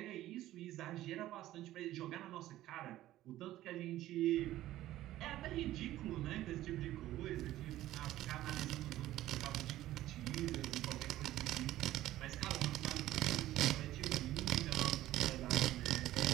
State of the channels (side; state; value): left; quieter; 14.6 dB